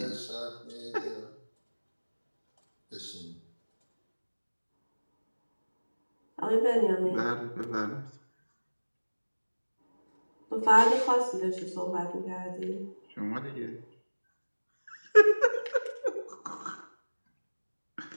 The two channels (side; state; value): both; inverted; correlation -1.00